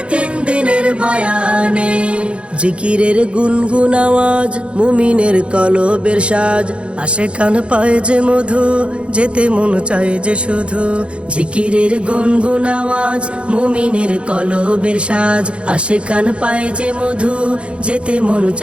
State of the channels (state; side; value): late; left; 0.058 ms